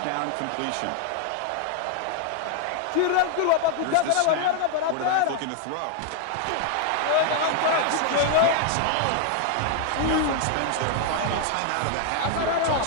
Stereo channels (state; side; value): different; both; correlation 0.00